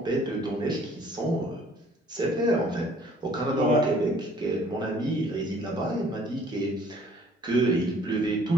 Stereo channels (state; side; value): normal; both; correlation 0.56